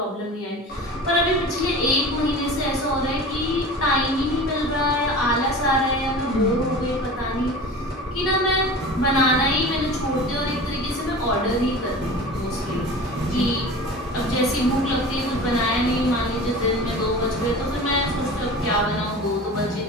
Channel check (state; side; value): normal; both; correlation 0.36